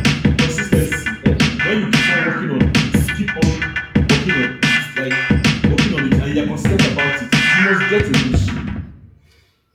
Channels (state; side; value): identical; both; correlation 1.00